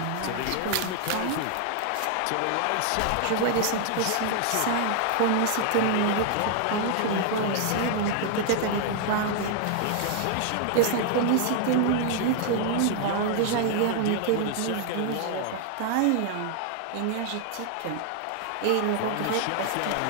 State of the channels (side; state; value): both; different; correlation 0.00